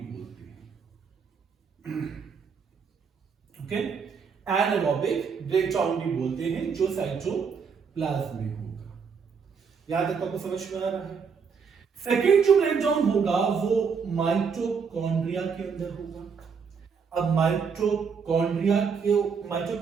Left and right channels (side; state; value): left; quieter; 6.0 dB